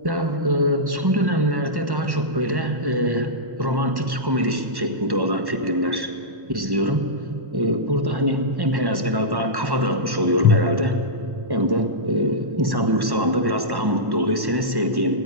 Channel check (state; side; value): late; left; 1.1 ms